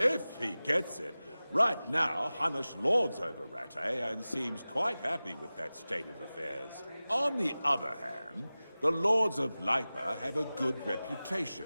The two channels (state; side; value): inverted; both; correlation -0.97